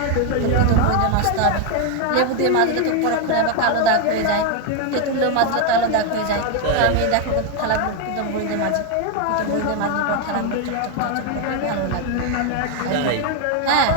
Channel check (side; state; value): both; different; correlation 0.01